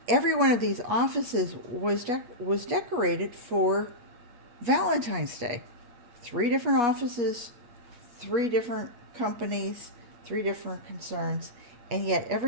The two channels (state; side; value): late; left; 8.3 ms